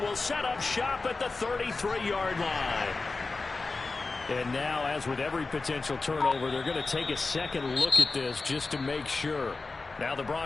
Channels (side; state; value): right; quieter; 3.8 dB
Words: will set up shop at the 33-yard line. And now, as with every potential turnover, they're going to take a second look at this just to make sure. Now the